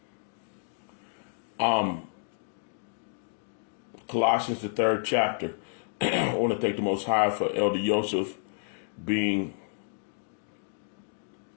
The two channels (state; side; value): silent; right; digital silence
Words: Colossians, the 3rd chapter. I want to thank the Most High for Elder Joseph being